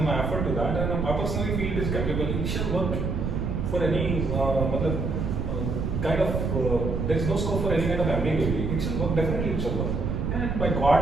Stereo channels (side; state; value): right; noise; rumble, 1 dB below the sound